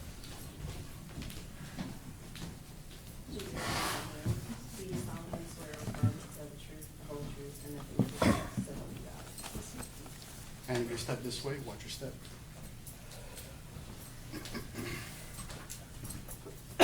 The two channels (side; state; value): both; identical; correlation 1.00